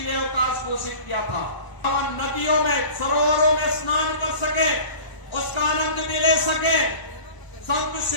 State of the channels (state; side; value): late; right; 1.0 ms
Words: अवकाश घोषित किया था, नदियों में सरोवरों में स्नान कर सके, उसका आनंद भी ले सके, संत